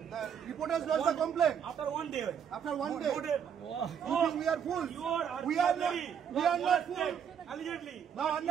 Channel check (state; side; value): quieter; left; 8.0 dB